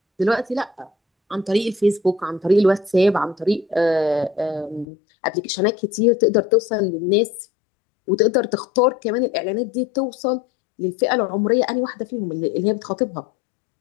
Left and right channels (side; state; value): right; drops out; at 4.9 s